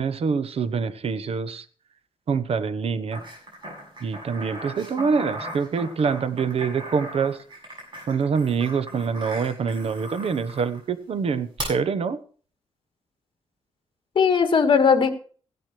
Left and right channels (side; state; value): both; normal; correlation 0.57